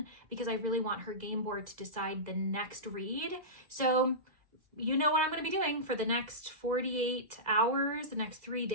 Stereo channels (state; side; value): late; left; 2.0 ms